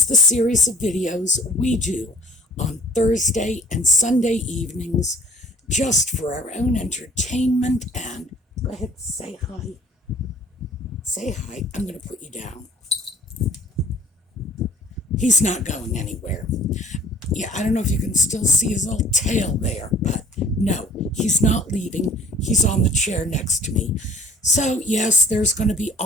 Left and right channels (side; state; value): both; normal; correlation 0.50